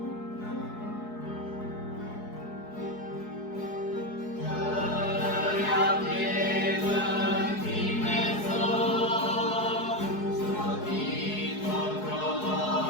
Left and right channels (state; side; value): late; right; 4.7 ms